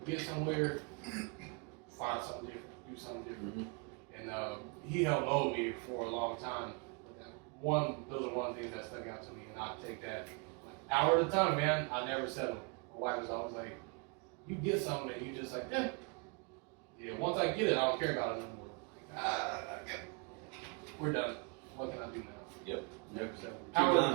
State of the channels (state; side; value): quieter; left; 33.1 dB